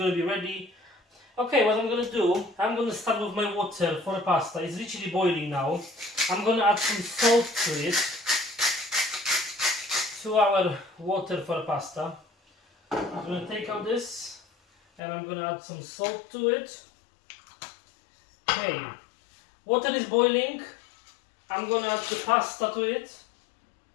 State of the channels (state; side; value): drops out; right; at 15.0 s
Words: to be ready. Okay, what I'm going to do, I'm going to start with my water for the pasta. It's literally boiling now. I'm going to add some salt to it. To our water for pasta. I'm going to take out this and I'm going to add some salt to it. Okay, water is boiling. I'm going to add the pasta to it.